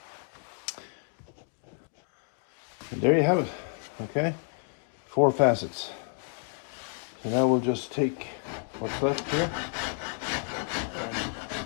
And there you have it, okay? 4 facets. So now we'll just take what's left here and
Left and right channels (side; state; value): right; silent; 58 dB below the other